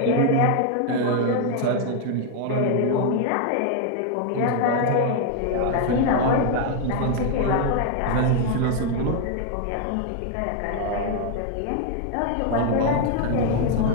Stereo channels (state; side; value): different; both; correlation 0.00